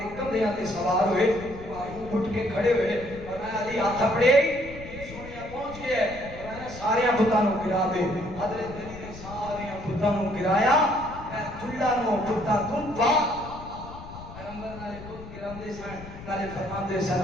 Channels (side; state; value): left; noise; rumble, 14 dB below the sound